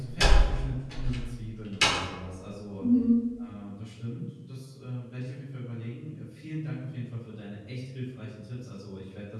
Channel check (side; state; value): both; identical; correlation 1.00